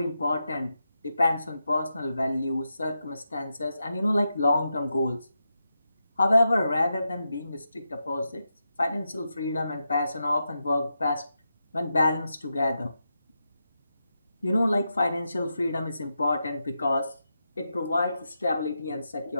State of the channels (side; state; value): both; inverted; correlation -0.87